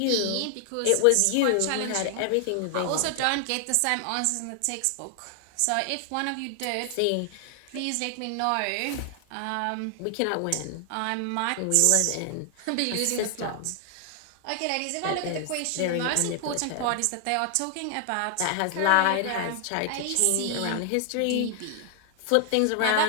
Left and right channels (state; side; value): different; both; correlation 0.00